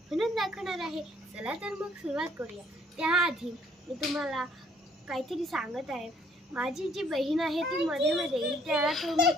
दाखवणार आहे। चला तर मग सुरुवात करूया। त्याआधी मी तुम्हाला काहीतरी सांगत आहे। माझी जी बहीण आहे ती मध्ये मध्ये येईल, त्याला तुम्ही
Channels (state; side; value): normal; both; correlation 0.63